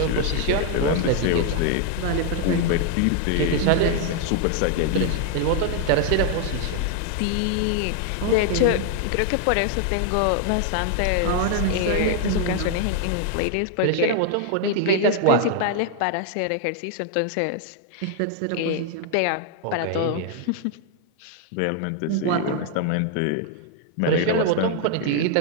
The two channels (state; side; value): different; both; correlation 0.00